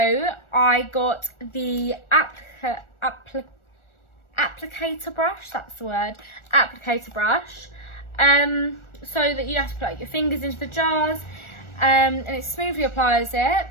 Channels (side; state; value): right; late; 1.4 ms